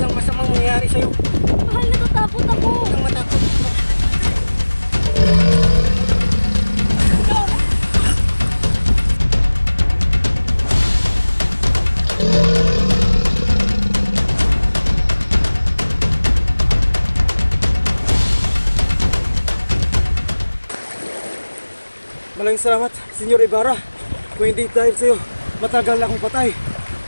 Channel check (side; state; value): both; inverted; correlation -1.00